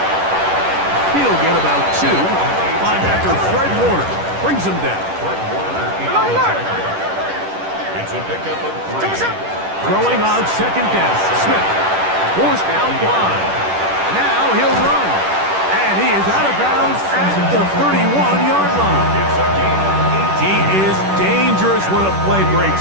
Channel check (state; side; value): late; left; 10 ms